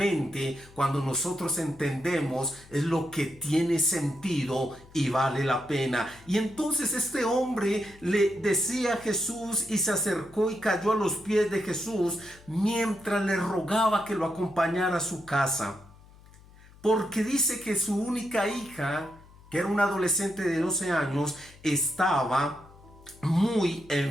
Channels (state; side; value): noise; left; hum, 23 dB below the sound